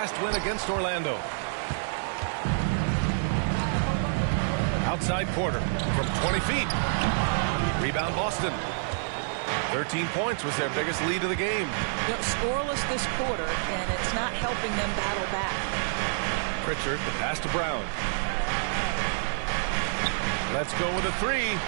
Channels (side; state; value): left; silent; digital silence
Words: win against Orlando. Outside Porter from 20 feet. Rebound Boston. 13 points was their biggest lead of the game. You know, scoreless this quarter, and it's not helping them battle back. Pritchard, the pass to Brown. Let's go with a 3.